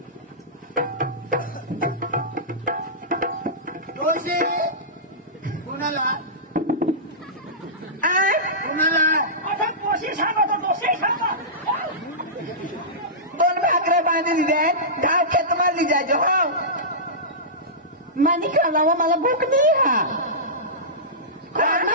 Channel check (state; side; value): normal; both; correlation -0.18